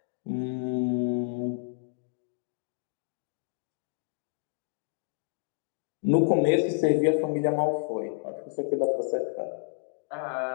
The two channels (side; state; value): right; silent; digital silence